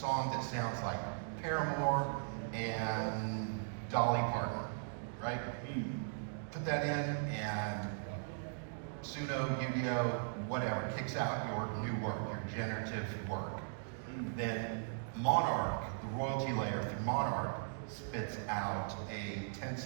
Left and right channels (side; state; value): left; silent; digital silence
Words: that sounds like Paramore and Dolly Parton, right? Put that in and sudo, udio, whatever, kicks out your new work, your generative work. Then Monarch, the royalty layer for Monarch, spits out a